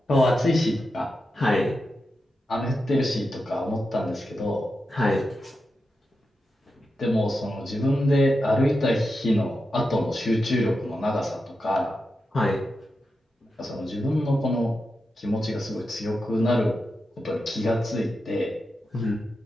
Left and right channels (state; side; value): normal; both; correlation 0.89